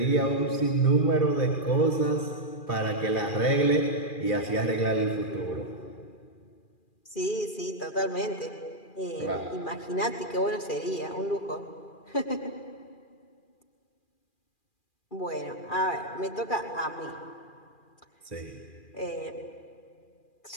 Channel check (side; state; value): right; late; 2.4 ms